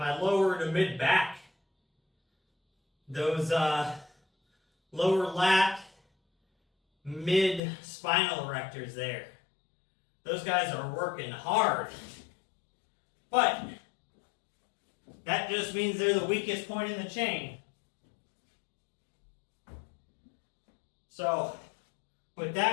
lower to mid back. Those lower lat, mid spinal erectors there. Those guys are working hard. But that just means they're the weakest point in the chain. So, with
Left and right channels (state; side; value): drops out; right; at 7.6 s